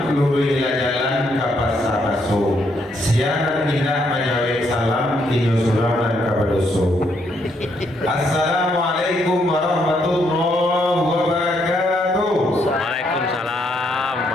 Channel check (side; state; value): both; normal; correlation 0.74